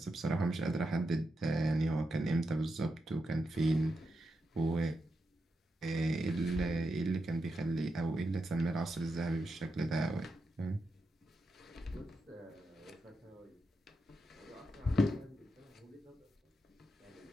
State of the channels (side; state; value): both; normal; correlation 0.86